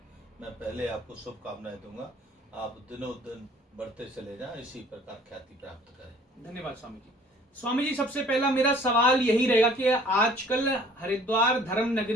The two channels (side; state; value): both; normal; correlation 0.53